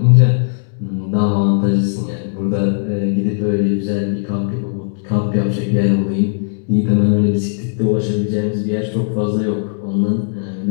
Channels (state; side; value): silent; right; digital silence